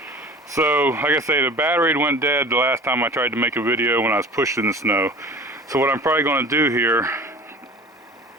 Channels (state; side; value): normal; both; correlation 0.42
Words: So, like I say, the battery went dead the last time I tried to make a video when I was pushing the snow. So what I'm probably going to do here